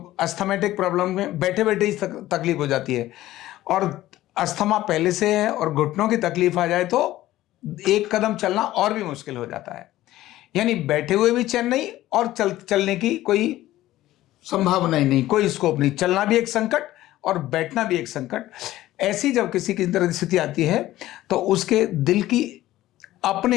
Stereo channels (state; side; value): quieter; right; 15.3 dB